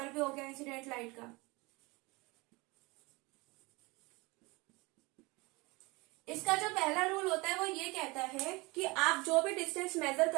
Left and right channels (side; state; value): left; quieter; 24.6 dB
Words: भी हो गया इंसिडेंट लाइट का। इसका जो पहला रूल होता है वो ये कहता है कि आप जो भी डिस्टेंस मेजर